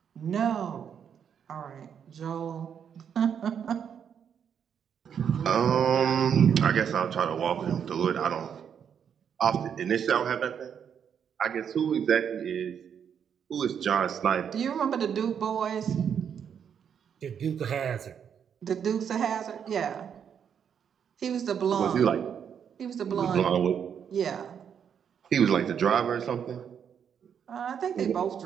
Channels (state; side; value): quieter; left; 7.9 dB